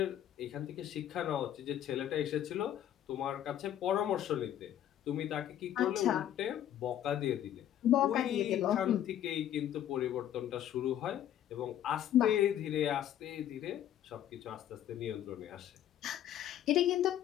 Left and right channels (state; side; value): quieter; right; 11.2 dB